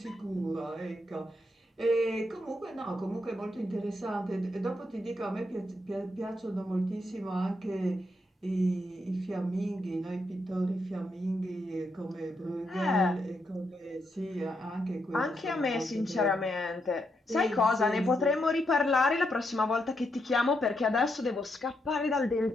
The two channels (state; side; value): normal; both; correlation 0.80